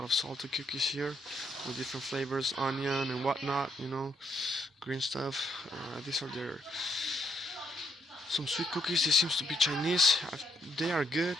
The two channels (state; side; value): normal; both; correlation 0.73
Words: of salted cookies here with different flavors, onion and whatnot, green stuff. These are some sweet cookies. This seems to be Chinese. They are good,